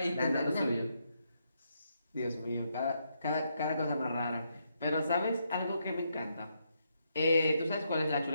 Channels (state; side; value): inverted; both; correlation -0.79